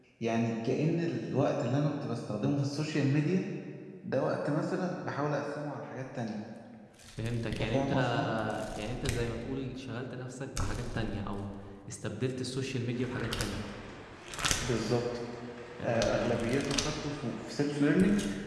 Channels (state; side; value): identical; both; correlation 1.00